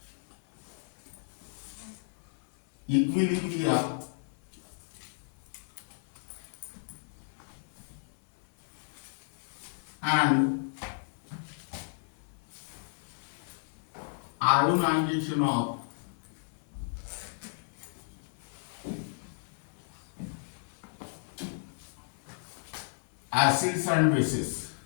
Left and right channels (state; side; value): silent; right; 55 dB below the other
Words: equilibria and ionization of acids and bases.